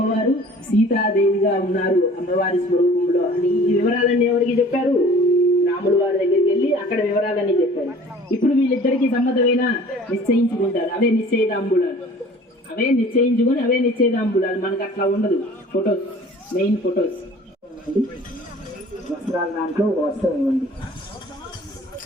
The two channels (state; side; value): normal; both; correlation 0.48